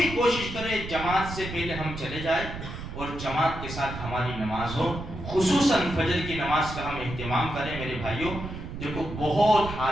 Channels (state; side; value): noise; right; rumble, 9 dB below the sound